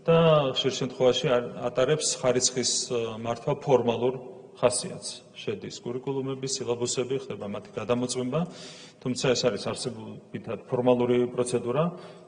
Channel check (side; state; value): both; identical; correlation 1.00